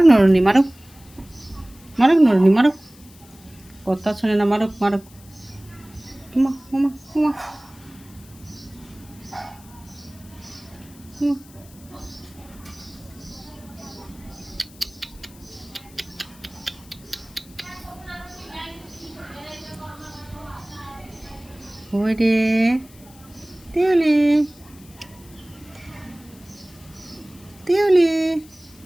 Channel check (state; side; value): noise; left; hiss, 24 dB below the sound